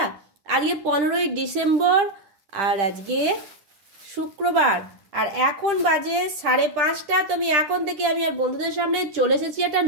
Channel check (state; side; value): late; left; 10 ms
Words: আজকে 15ই ডিসেম্বর আর আজকে শুক্রবার, আর এখন বাজে 5:30। তো আমি এখন থেকে আমি আর বন্ধুদের সামনে চলে এসেছি একটা